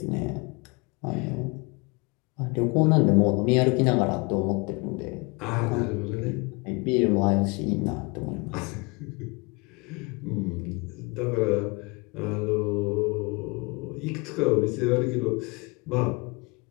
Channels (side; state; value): right; quieter; 28.5 dB